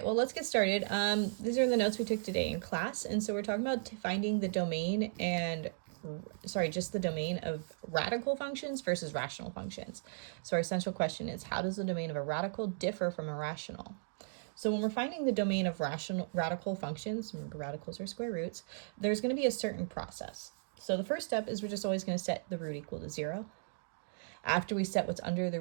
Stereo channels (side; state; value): left; silent; digital silence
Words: well let's get started. These are the notes we took today in class, and so we're talking about finding the domain and just the domain of radical functions versus rational functions. So our essential question is, how does the domain of a radical differ from a rational? So when we're finding the domain of radical functions, remember radicals are square roots, there's going to be a certain process. So the first step is we're just always going to set the root equal to 0. After we set what's under the